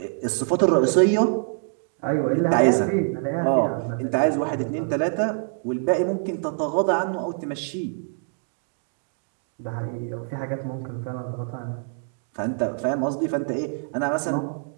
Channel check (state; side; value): silent; left; 62 dB below the other